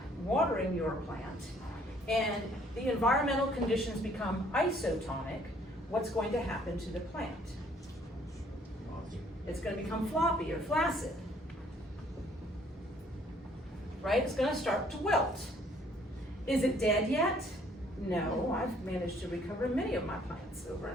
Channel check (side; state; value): both; normal; correlation 0.62